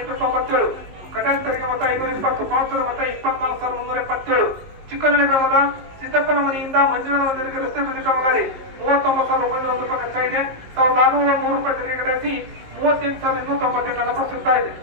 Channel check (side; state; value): left; late; 19 ms